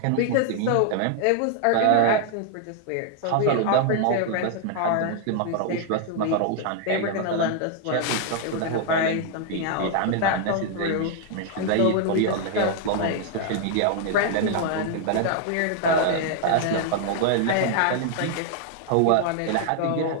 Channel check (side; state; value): both; different; correlation 0.00